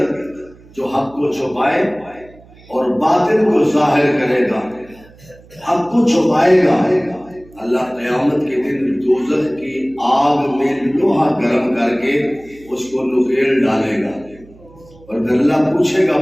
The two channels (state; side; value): noise; right; hum, 25 dB below the sound